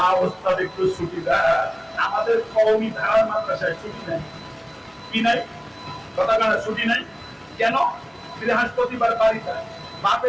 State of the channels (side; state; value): both; identical; correlation 1.00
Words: ওস্তাদ একটু ছুটি দেন, আমাদের কওমি ধারার মাদ্রাসায় ছুটি নেই। কি নাই? কথা কানা ছুটি নাই কেন? বৃহস্পতিবার বাড়িতে বাপে